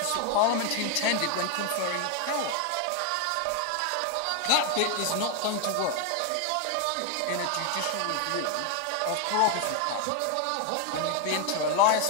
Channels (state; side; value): different; both; correlation 0.01